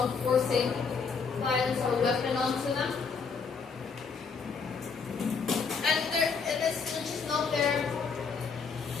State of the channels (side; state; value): right; quieter; 5.4 dB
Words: forcing violence or weapon onto them. And it's just not their.